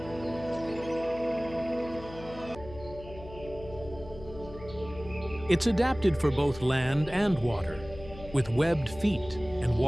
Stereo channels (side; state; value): left; noise; hum, 16 dB below the sound